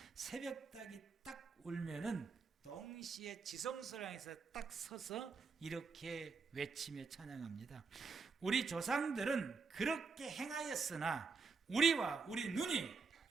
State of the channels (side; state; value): left; quieter; 4.9 dB